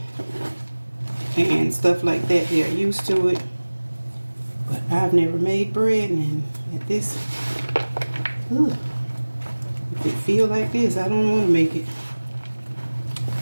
and stuff like that, they're used to it. But I've never made bread, and at this, ugh, if it feel like this, I don't want to make it.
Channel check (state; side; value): inverted; both; correlation -1.00